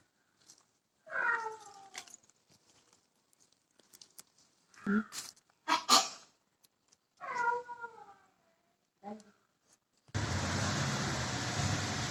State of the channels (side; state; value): both; identical; correlation 1.00